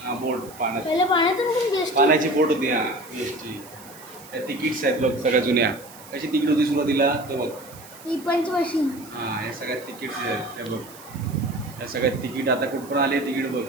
हां बोट पाण्यात पहिलं पाण्यातून पण बेस्ट पाण्याची बोट होती हां BST त्या तिकीट्स आहेत बघ सगळ्या जुन्या कशी तिकीट होती सुरुवातीला तर बघ ही पंच मशीन हां या सगळ्या तिकीट्स आहेत त्या बघ या सगळ्या तिकीट आता कुठपर्यंत आले तिकीट बघ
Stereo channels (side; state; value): right; noise; hiss, 20 dB below the sound